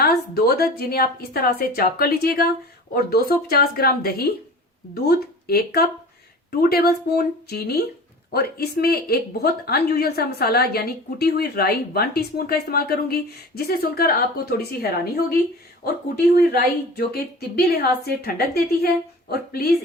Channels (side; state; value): both; normal; correlation 0.38